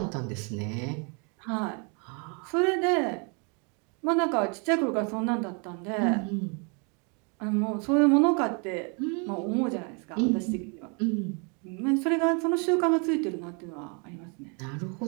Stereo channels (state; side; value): quieter; left; 35.3 dB